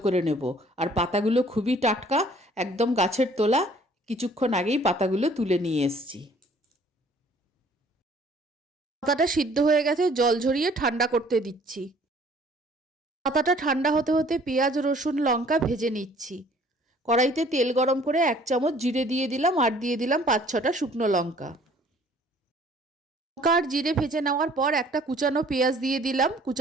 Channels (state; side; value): normal; both; correlation 0.56